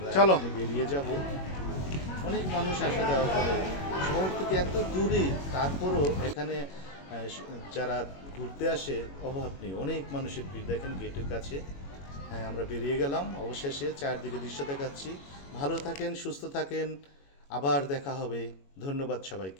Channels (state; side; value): late; right; 21 ms